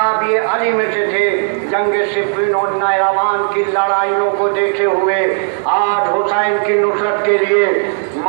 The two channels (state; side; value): silent; left; digital silence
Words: علی میں سے تھے۔ جنگ صفین اور نیروان کی لڑائیوں کو دیکھے ہوئے آج حسین کی نصرت کے لیے